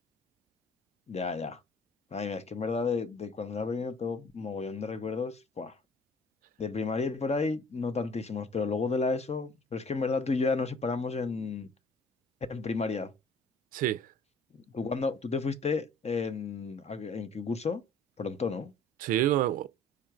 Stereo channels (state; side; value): normal; both; correlation 0.51